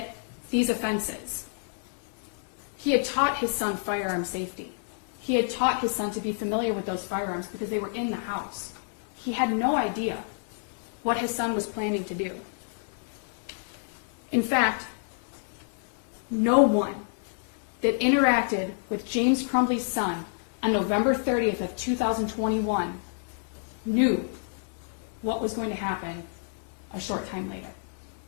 these offenses. He had taught his son firearm safety. He had taught his son to be familiar with those firearms because they were in the house. He had no idea what his son was planning to do. In fact, no one that interacted with James Crumbley's son on November 30th of 2021 knew what was going to happen a short time later.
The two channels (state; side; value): silent; right; 59 dB below the other